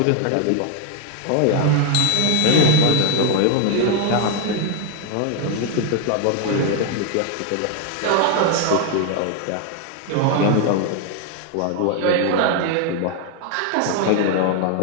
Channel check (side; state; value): both; different; correlation 0.01